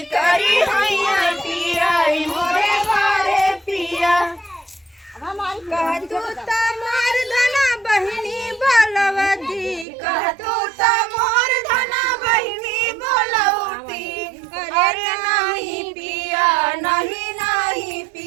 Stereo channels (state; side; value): drops out; left; at 9.9 s